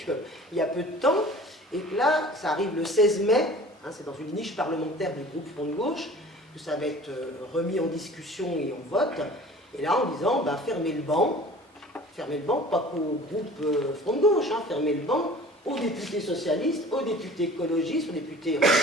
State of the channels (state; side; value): normal; both; correlation 0.45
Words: y a peu de temps, et que là, ça arrive le 16 mai, hein, c'est dans une niche parlementaire du groupe Front de Gauche, que ça va être remis en discussion et en vote, et là en disant, ben, fermez le banc, pas qu'au groupe Front de Gauche, hein, fermez le banc aux députés socialistes, aux députés écologistes, aux députés